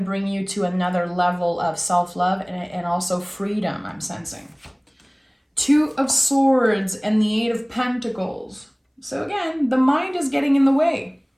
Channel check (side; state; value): both; identical; correlation 1.00